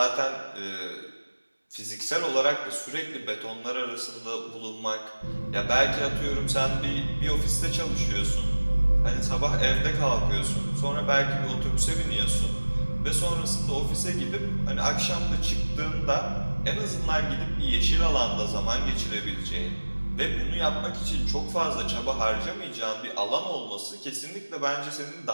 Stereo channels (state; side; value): inverted; both; correlation -1.00